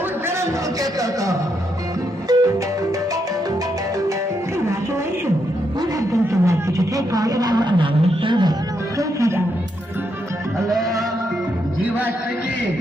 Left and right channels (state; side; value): normal; both; correlation 0.79